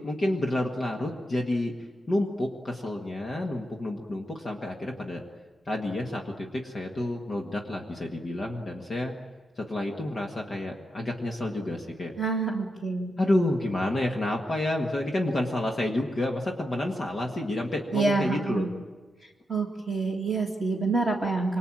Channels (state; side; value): normal; both; correlation 0.85